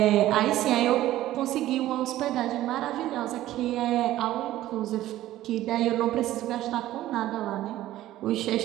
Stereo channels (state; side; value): quieter; left; 14.5 dB